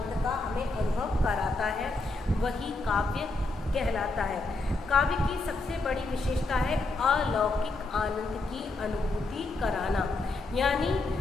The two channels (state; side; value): quieter; right; 3.1 dB